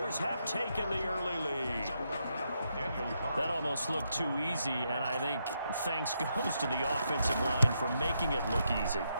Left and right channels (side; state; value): both; inverted; correlation -0.80